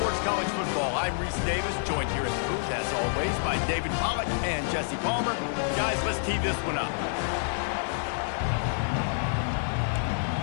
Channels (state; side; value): silent; right; digital silence